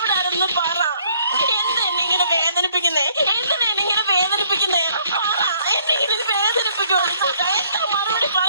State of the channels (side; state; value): both; inverted; correlation -0.63